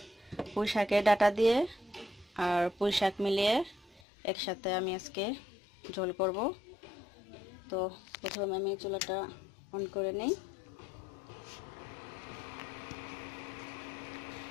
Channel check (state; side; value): drops out; right; at 4.0 s